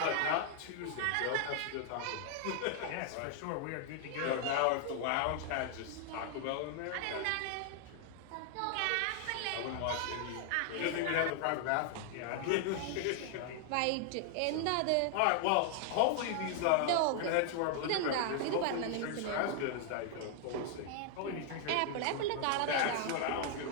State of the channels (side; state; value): both; different; correlation 0.00